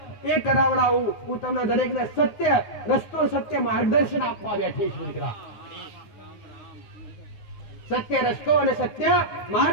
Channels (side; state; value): right; late; 9.6 ms